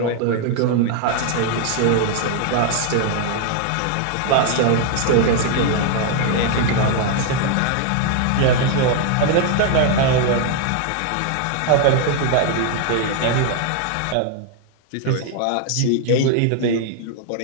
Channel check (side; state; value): both; different; correlation 0.00